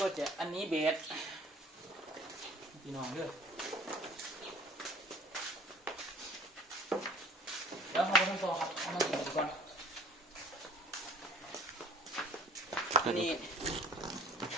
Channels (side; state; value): both; normal; correlation 0.50